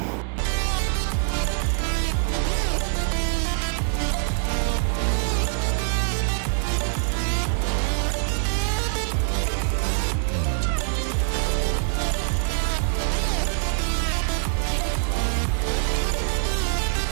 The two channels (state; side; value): silent; left; 62 dB below the other